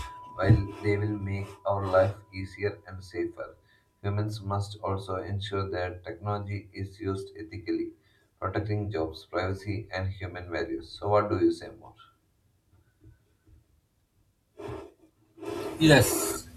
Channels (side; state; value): both; identical; correlation 1.00